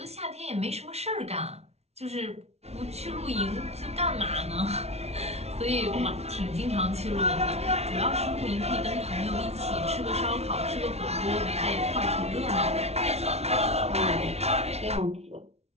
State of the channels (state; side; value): late; left; 0.31 ms